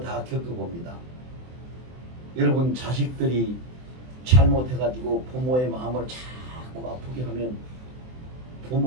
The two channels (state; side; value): late; left; 24 ms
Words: 겪어봅니다. 여러분 자식들이 잘못해가지고 부모의 마음을 자꾸 아프게 하면